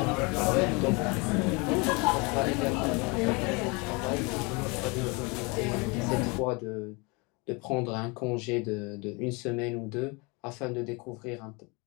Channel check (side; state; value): right; quieter; 28.6 dB